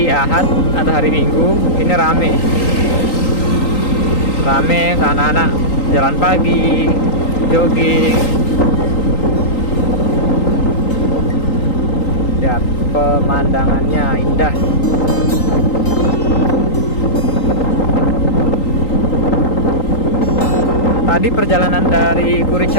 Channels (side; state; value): right; late; 3.8 ms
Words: Ahad atau hari Minggu ini rame ke anak-anak jalan pagi, jogging. Lihat pemandangannya indah. Tadi perjalanan dari Kuri